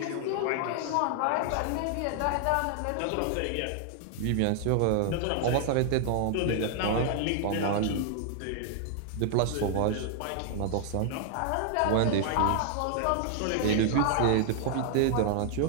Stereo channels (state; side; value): different; both; correlation 0.00